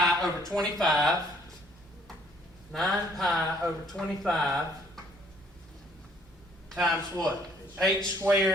over 25. 9 pi over 25 times what? H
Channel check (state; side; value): normal; both; correlation 0.62